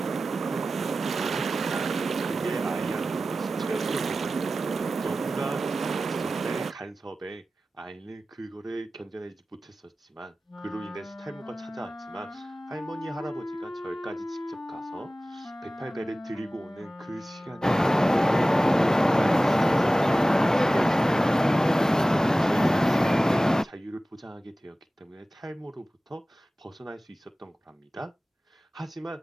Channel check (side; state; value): both; normal; correlation 0.96